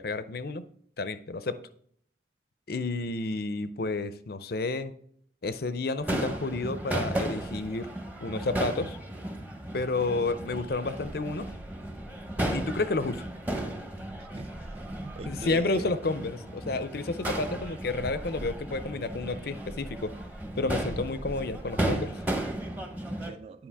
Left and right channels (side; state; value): both; normal; correlation 0.37